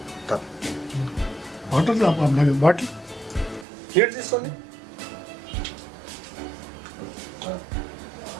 బాటిల్ నీళ్ళు తీసుకోండి.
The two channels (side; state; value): left; drops out; at 3.7 s